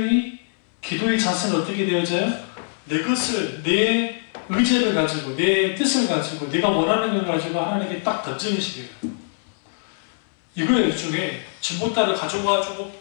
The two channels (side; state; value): right; silent; 64 dB below the other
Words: 기도의 자세는 어떻게 되어져요? 내 것을, 내 의지를 가지고, 내 뜻을 가지고, 내가 원하는 걸 가지고 하나님께 딱 던지는 식이에요. 이거예요. 일종의 진보따를 가져가지고